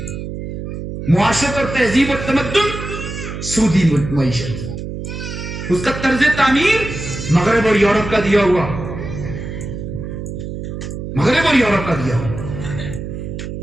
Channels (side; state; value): right; noise; hum, 7 dB below the sound